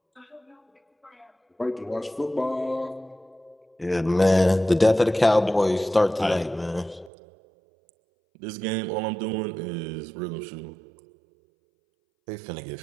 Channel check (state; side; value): drops out; left; at 7.1 s